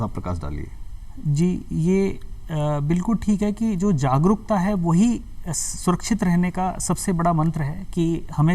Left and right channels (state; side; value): identical; both; correlation 1.00